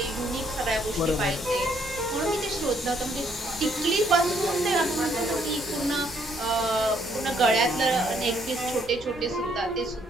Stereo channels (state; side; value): normal; both; correlation 0.69